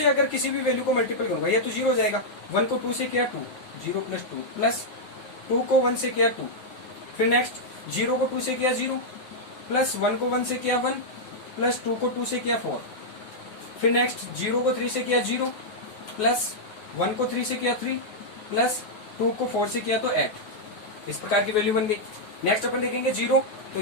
अगर किसी भी वैल्यू को मल्टीपल करूंगा ये तो 0 हो जाएगा। 1 को 2 से किया 2 0 प्लस 2 प्लस 2 को 1 से किया 2, फिर नेक्स्ट 0 को 2 से किया 0 प्लस 1 को 1 से किया 1 प्लस 2 को 2 से किया 4, फिर नेक्स्ट 0 को 3 से किया 0 प्लस 1 को 3 से किया 3 प्लस 2 को 4 से किया तो 8। इस प्रकार की वैल्यू बन गई। नेक्स्ट अपन देखेंगे 0, तो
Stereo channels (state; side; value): late; right; 9.4 ms